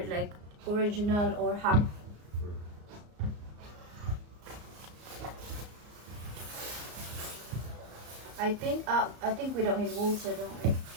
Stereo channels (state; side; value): late; left; 34 ms